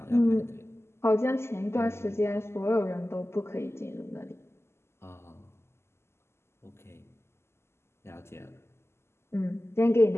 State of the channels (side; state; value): right; late; 0.12 ms